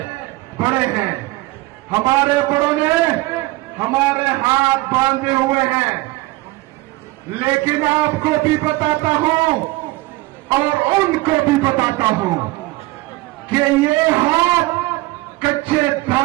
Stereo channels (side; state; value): left; quieter; 20.3 dB